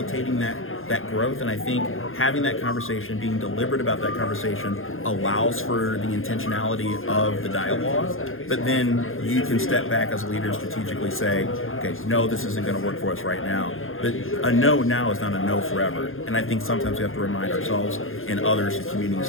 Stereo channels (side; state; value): right; late; 0.60 ms